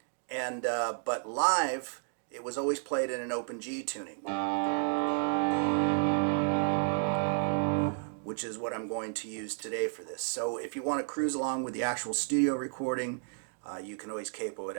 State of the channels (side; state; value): left; silent; digital silence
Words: and but live it was always played in an open G tuning, which is what I'm going to use today for this. So if you want to cruise along with the actual studio recording, you can always capo it